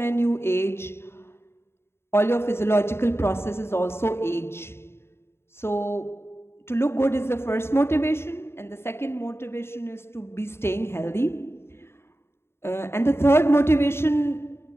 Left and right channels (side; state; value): right; late; 0.12 ms